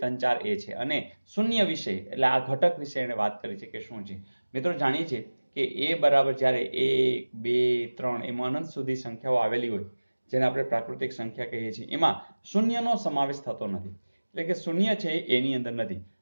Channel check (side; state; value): both; inverted; correlation -1.00